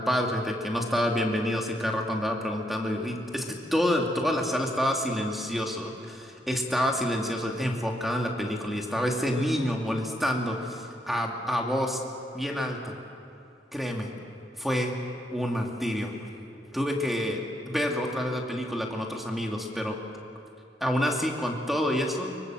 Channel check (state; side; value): normal; both; correlation 0.76